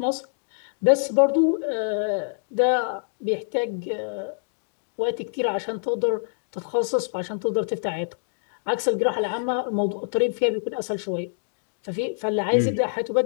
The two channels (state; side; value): silent; right; digital silence